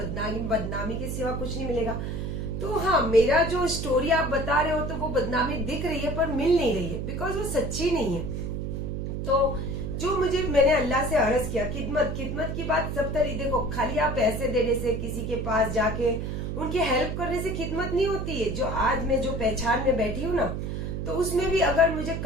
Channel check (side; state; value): right; noise; hum, 3 dB below the sound